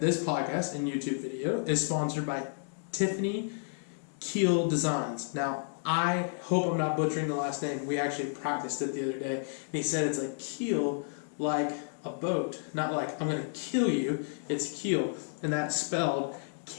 podcast and YouTube video is sponsored by Tiffany Keel Designs. Now, I hope I'm not butchering the last name. We actually practiced it the other day, and he said it's like keel, like a boat, not like I'm going to kill you. It's keel, and that's spelled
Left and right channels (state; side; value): silent; right; digital silence